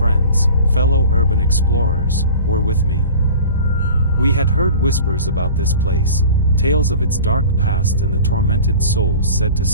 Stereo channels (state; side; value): inverted; both; correlation -0.40